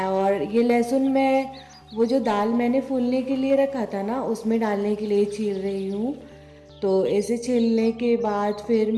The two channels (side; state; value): both; identical; correlation 1.00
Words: ये लहसुन मैं वो जो दाल मैंने फूलने के लिए रखा था ना, उसमें डालने के लिए छील रही हूँ। तो ऐसे छीलने के बाद फिर